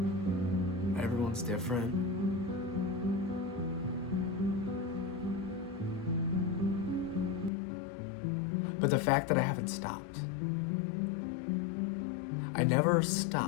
Everyone's different. But the fact that I haven't stopped. I never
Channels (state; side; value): drops out; right; at 7.5 s